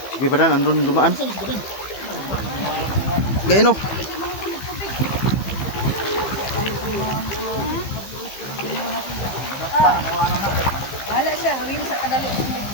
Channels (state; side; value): late; right; 15 ms